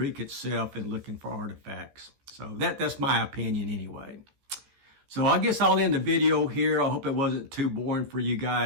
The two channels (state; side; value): late; left; 15 ms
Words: itself and looking for artifacts. So that's my opinion anyway. So I guess I'll end the video here. I hope it wasn't too boring for you